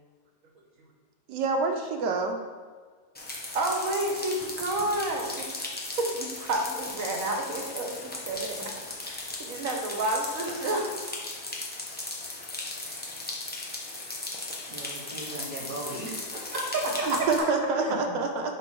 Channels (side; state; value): both; normal; correlation -0.02